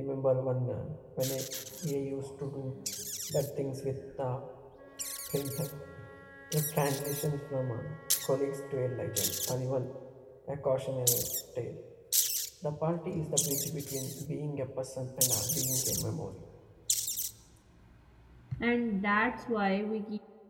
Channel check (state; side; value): identical; both; correlation 1.00